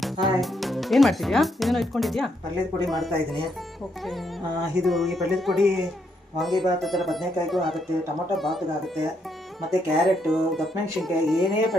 Hi. ಏನು ಮಾಡ್ತಿದ್ಯಾ? ಏನೇನೋ ಇಟ್ಕೊಂಡಿದ್ಯಾ? ಪಲ್ಯದ ಪುಡಿ ಮಾಡ್ತಾ ಇದ್ದೀನಿ. ಓಕೆ. ಈ ಪಲ್ಯದ ಪುಡಿ ವಾಂಗಿಭಾತ್ ಥರ ಬದನೆಕಾಯಿಗೂ ಆಗುತ್ತೆ, ಟೊಮೊಟೊ ಬಾತ್ಗೆ ಆಗುತ್ತೆ, ಮತ್ತು ಕ್ಯಾರೆಟು, ದಪ್ಪಮೆಣಸಿನ್ಕಾಯಿ, ಏನೇ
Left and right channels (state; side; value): normal; both; correlation 0.76